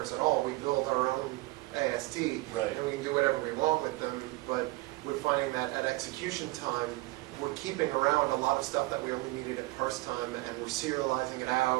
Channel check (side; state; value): left; quieter; 21.3 dB